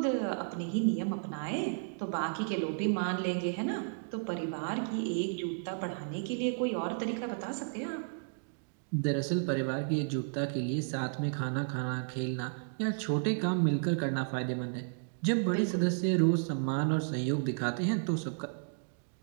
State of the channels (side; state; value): left; silent; digital silence